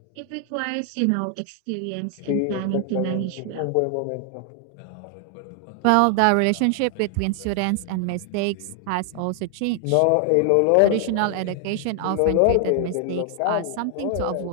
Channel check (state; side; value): different; both; correlation 0.00